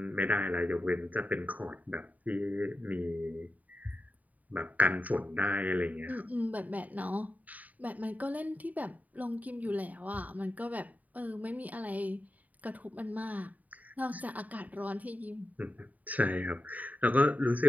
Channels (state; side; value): late; left; 0.074 ms